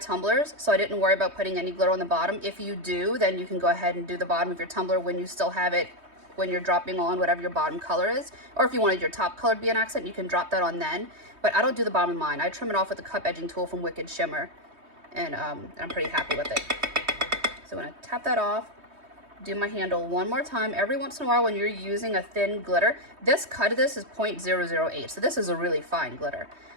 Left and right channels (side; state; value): left; late; 3.2 ms